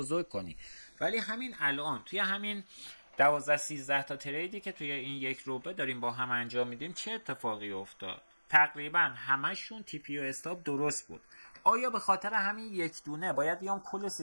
کنی، ولی همین الان توی همین 12-13 تا تریدی که توی این یک روبه داریم با هم انجام میدیم چه اتفاقی افتاد؟ تقریبا همشون تیپی و استاپ درست بود. آیا به خاطر همین یک دونه باید بیام کل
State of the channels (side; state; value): both; inverted; correlation -1.00